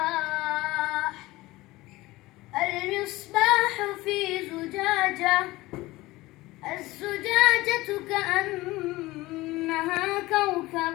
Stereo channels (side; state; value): right; quieter; 19.2 dB